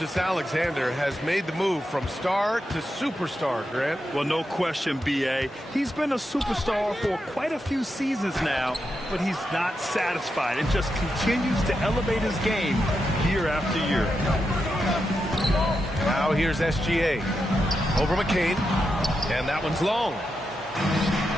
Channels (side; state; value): both; normal; correlation 0.86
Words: has made the move from star to superstar, Grant. Well, no question, B.A. He's been a superstar for quite a few seasons now, but he's not satisfied and just continues to elevate his game year after year. Now here's SGA. Over McCain. And that one's long.